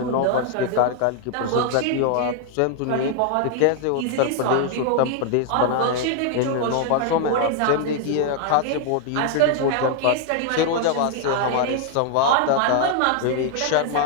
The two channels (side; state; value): both; different; correlation 0.00